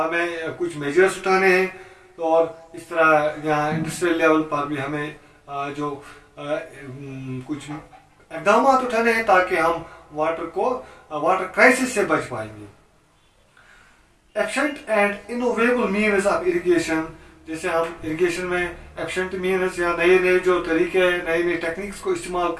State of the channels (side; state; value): both; identical; correlation 1.00